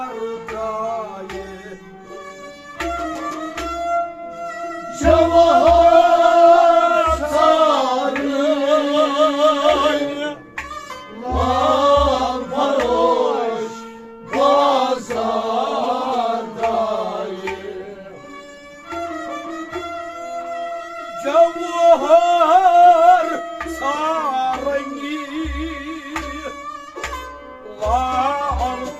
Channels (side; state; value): both; identical; correlation 1.00